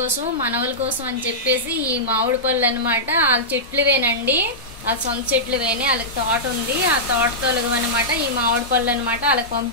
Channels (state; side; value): normal; both; correlation -0.13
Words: మనవల కోసం అని చెప్పేసి ఈ మామిడి పళ్ళు అనమాట వాళ్ళ చెట్లువేనండి. వాళ్ళ సొంత చెట్లువేనే, వాళ్ళకి తోట ఉంది. ఆ తోటతో అనమాట ఈ మామిడి పళ్ళు అనమాట. వాళ్ళకి